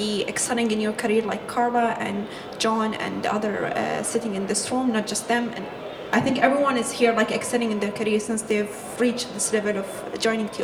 excelling in your career, like Carla and John and the other sitting in this room, not just them. And I think everyone is here like excelling in their career since they've reached this level of joining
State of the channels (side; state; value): both; identical; correlation 1.00